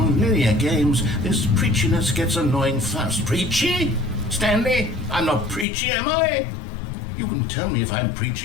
games, this preachiness gets annoying fast. Preachy? Stanley, I'm not preachy, am I? You can tell me if I'm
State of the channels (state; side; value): drops out; right; at 5.7 s